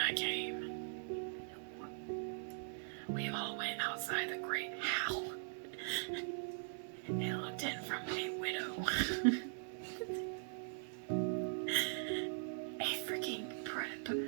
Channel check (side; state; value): left; silent; digital silence